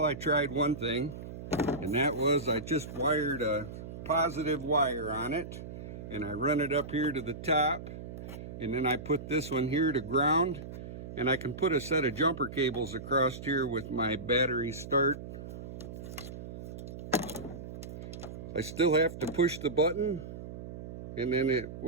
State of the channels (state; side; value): noise; right; hum, 10 dB below the sound